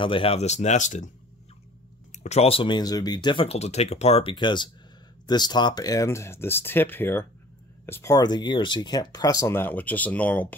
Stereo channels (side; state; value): both; normal; correlation 0.48